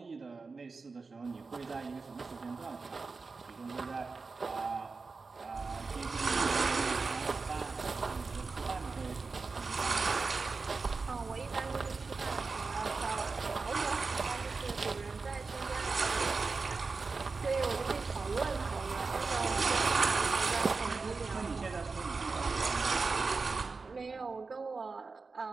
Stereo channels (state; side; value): quieter; left; 4.3 dB